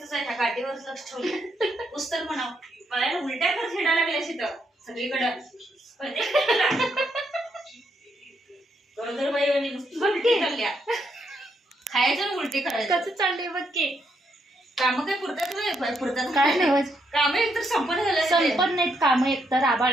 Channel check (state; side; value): normal; both; correlation 0.77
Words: आहे, ह्या गाठीवरच लक्ष ठेवलं. पुस्तक म्हणाव पायाला उलट्या कर खेळा लागल्या तिथं सगळीकडं. गरोदर बाई आणि नुसती चालल्या खायचं उलटी करायचं. कसं चाललंय बघ की. काम काय पुरतात काय नाही काम एकतर संपन्न झालं. संपन्न नाहीत काम. एकतर